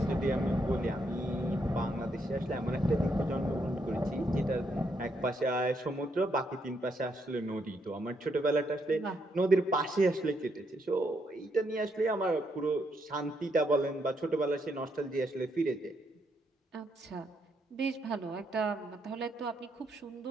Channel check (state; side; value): normal; both; correlation 0.76